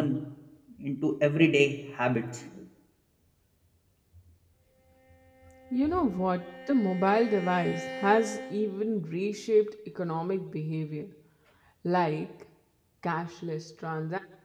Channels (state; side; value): identical; both; correlation 1.00